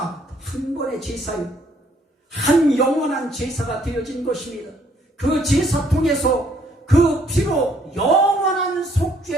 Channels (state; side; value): normal; both; correlation 0.65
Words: 한 번의 제사요, 한 영원한 제사가 되어진 것입니다. 그 제사 통해서 그 피로 영원한